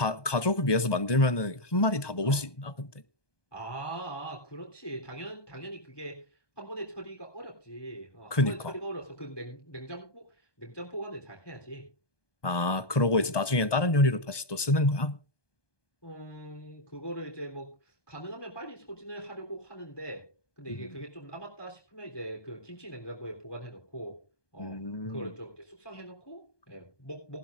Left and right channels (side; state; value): right; late; 1.2 ms